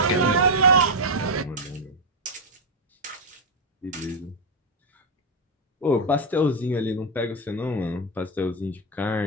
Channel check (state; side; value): normal; both; correlation 0.03